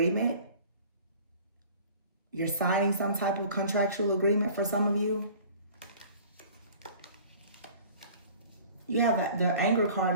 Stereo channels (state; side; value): inverted; both; correlation -0.47